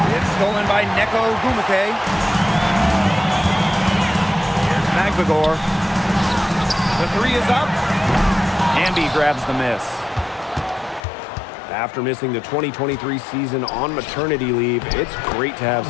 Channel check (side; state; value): right; drops out; at 11.1 s